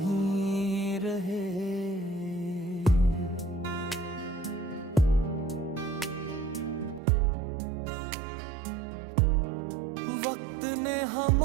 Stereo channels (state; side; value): drops out; left; at 7.0 s